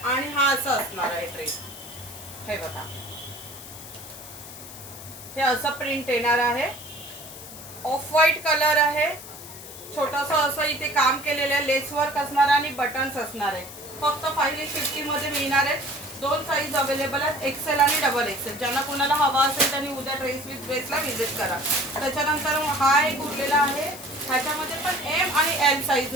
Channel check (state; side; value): noise; left; hiss, 14 dB below the sound